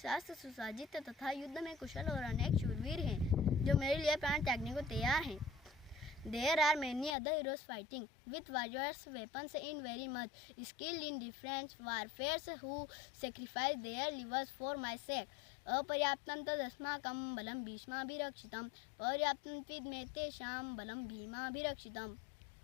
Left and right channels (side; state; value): right; drops out; at 7.2 s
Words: सुसज्जित तथा युद्ध में कुशल और अनेक शूरवीर हैं जो मेरे लिए प्राण त्यागने को तैयार हैं। There are many other heroes fighting with various weapons in very much skilled in different warfares who sacrifice their livers for my sake. अपर्याप्तं तदस्माकं बलं भीष्माभिरक्षितं पर्याप्तं त्विदमे तेषां बलं भीमाभिरक्षितम्।